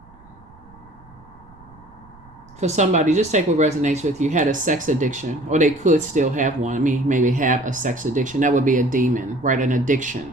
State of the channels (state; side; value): noise; right; rumble, 25 dB below the sound